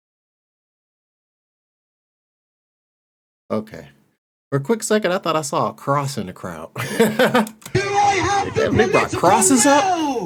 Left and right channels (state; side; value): identical; both; correlation 1.00